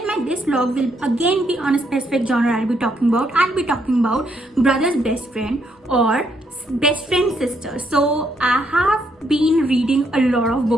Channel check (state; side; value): normal; both; correlation 0.74